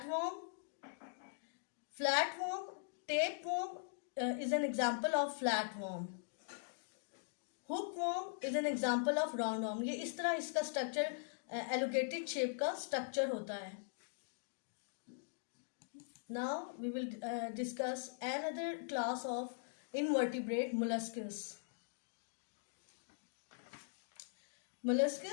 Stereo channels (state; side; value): silent; right; digital silence